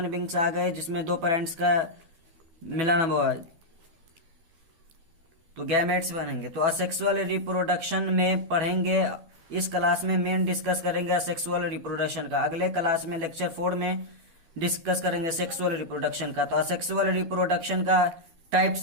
बींग्स आ गए जिसमें दो पेरेंट्स का मिलन हुआ तो गैमेट्स बनेंगे। तो असेक्सुअल रिप्रोडक्शन में पढ़ेंगे, इस क्लास में मेन डिस्कस करेंगे असेक्सुअल रिप्रोडक्शन का। अगले क्लास में लेक्चर 4 में डिस्कस करेंगे सेक्सुअल रिप्रोडक्शन का। तो असेक्सुअल रिप्रोडक्शन का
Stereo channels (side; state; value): left; late; 12 ms